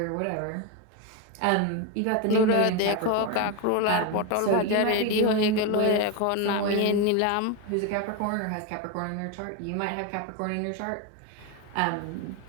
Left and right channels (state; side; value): different; both; correlation 0.02